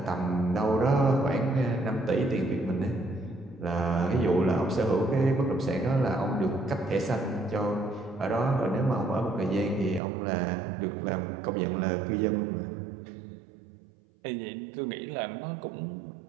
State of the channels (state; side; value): drops out; left; at 10.0 s